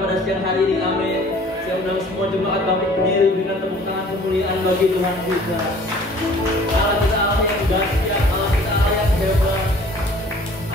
siang hari ini, amin. Saya undang semua jemaat bangkit berdiri dengan tepuk tangan kemuliaan bagi Tuhan kita. Allah kita Allah yang dahsyat, Allah kita Allah yang hebat,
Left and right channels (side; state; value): both; normal; correlation 0.51